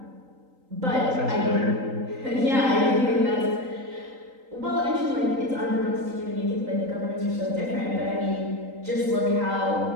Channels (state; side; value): late; left; 3.8 ms